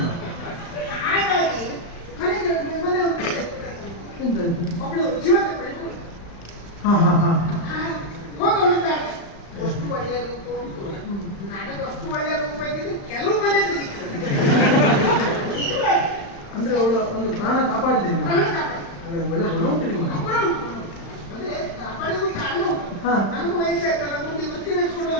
ಹಾಗಾಗಿ ಕಡೆಗೆ ಮನೆ ಒಬ್ಬಳು ಜೀವ ತಗೊಳ್ಳಿ ಹೋಗೋಳು. ಅಷ್ಟು ಒಳ್ಳೆಯದು ಉಂಟು. ಅಷ್ಟು ಒಳ್ಳೆ ರೂಪ ಇದ್ದಿದ್ದು ಕೆಲವು ಮನೆ ತೆಗಿತಾರೆ ಅಂದ್ರೆ ಅವಳು ಒಂದು ಪ್ರಾಣ ಕಾಪಾಡಿದೆ ನೀವು. ಪ್ರಾಣ ಕಾಪಾಡಿ. ಹಾಗೆ ಒಳ್ಳೆ ಗುಣ ಉಂಟು ನಿಮಗೆ. ಅಂದ್ರೆ ಕಾಪಾಡಿಗೂ ಕಾರಣ ಉಂಟು. ಹಾ. ನನಗೂ ವಯಸ್ಸಾಯ್ತಲ್ಲ, ಮುಂದೆ ವೃತ್ತಿ ನಡೆಸ್ಕೊಂಡು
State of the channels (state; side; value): late; right; 35 ms